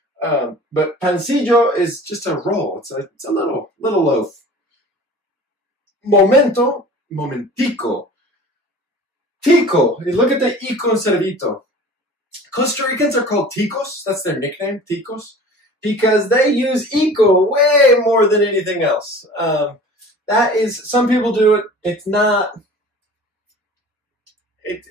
But pancillo is just a roll. It's a little loaf. Momento, momentico. Tico. You look at the ico instead of ito. Costa Ricans are called ticos. That's their nickname, ticos, because they use ico way more than anything else. That is, some people do it. It's not.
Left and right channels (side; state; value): both; normal; correlation 0.42